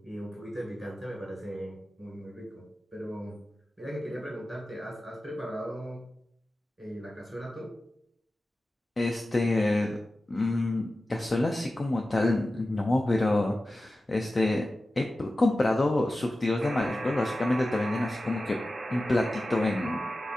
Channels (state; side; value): normal; both; correlation 0.94